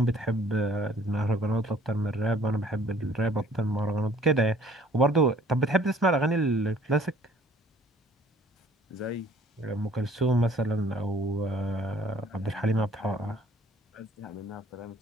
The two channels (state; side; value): normal; both; correlation 0.57